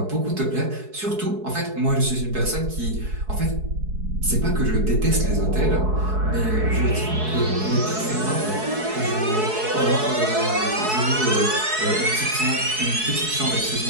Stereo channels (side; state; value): left; late; 4.7 ms